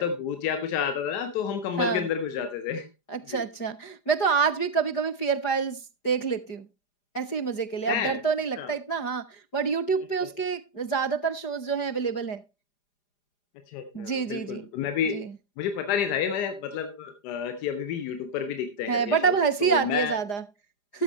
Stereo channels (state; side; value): late; right; 4.9 ms